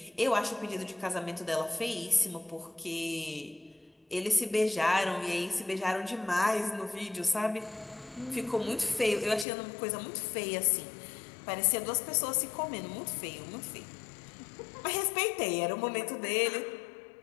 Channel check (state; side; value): drops out; right; at 9.5 s